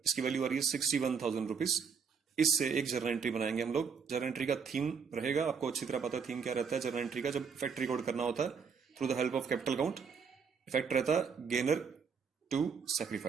इसकी वैल्यू आ रही है 61,000 रुपीज। इससे एक जर्नल एंट्री बनाएंगे हम लोग। जर्नल एंट्री का थीम रहेगा, आपको अच्छी तरह पता है थीम क्या रहता है जर्नल एंट्री का। जब इफेक्ट रिकॉर्ड करना होता है through the help of capital count, effect रहता है गेनर टू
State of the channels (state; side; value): quieter; left; 6.0 dB